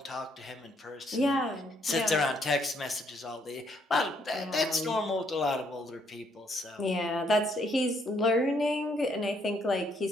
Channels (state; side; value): normal; both; correlation 0.70